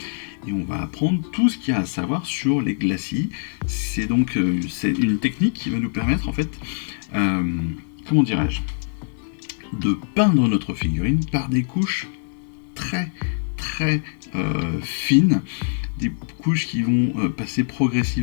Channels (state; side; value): silent; right; digital silence